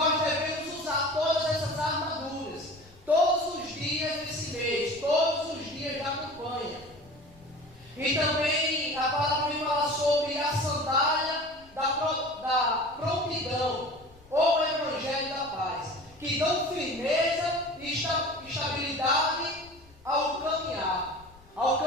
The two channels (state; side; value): noise; left; rumble, 25 dB below the sound